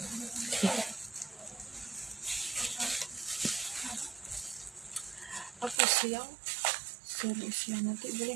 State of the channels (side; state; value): left; drops out; at 5.8 s